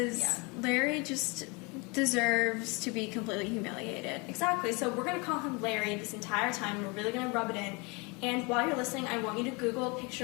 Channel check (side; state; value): right; quieter; 28.9 dB